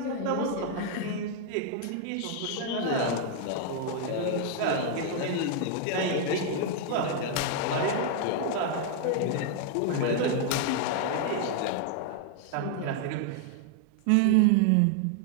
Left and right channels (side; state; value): both; different; correlation 0.00